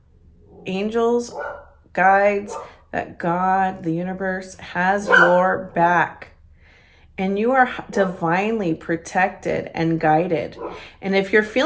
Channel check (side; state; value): both; identical; correlation 1.00